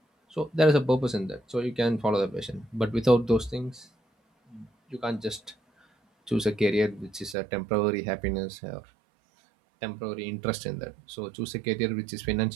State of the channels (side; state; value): left; drops out; at 7.4 s